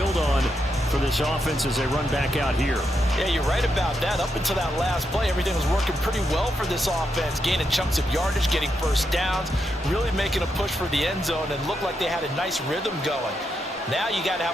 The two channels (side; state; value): both; normal; correlation 0.83